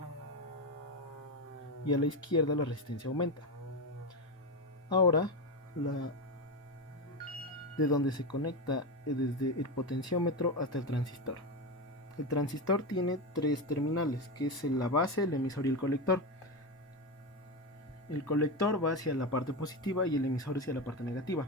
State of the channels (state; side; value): normal; both; correlation 0.14